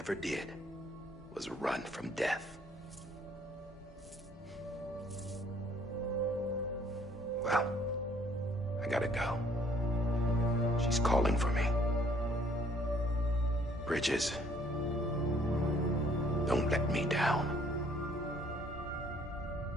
did was run from death. Well, I gotta go. She's calling for me. Bridges, don't let me down.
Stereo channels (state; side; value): normal; both; correlation 0.61